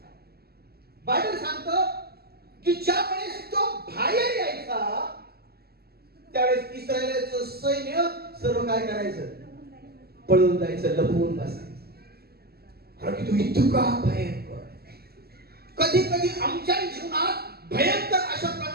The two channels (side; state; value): left; late; 0.46 ms